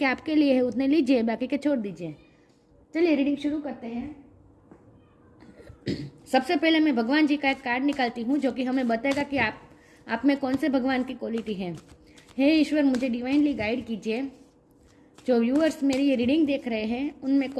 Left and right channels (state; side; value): identical; both; correlation 1.00